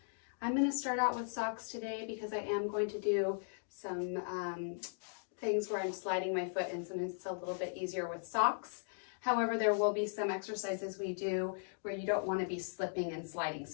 I'm going to start out with socks today because I am going to do some things where I'm sliding my foot in. Sometimes it's a little bit easier with socks. However, there will be some exercises we do where you don't want to be slipping and sliding,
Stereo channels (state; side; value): silent; right; digital silence